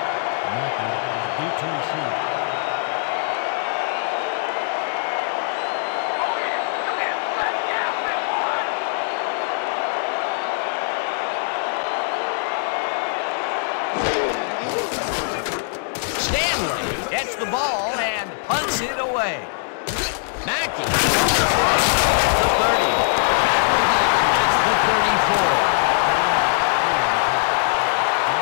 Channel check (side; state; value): right; silent; digital silence